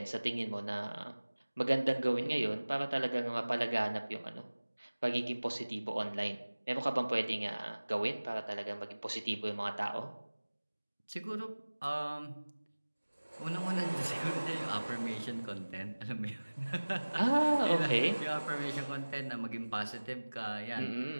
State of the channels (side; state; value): both; inverted; correlation -1.00